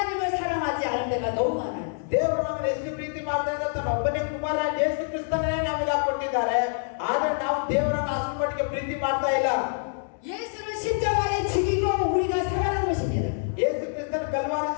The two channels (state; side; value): silent; right; digital silence